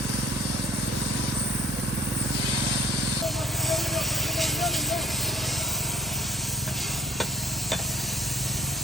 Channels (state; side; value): normal; both; correlation 0.57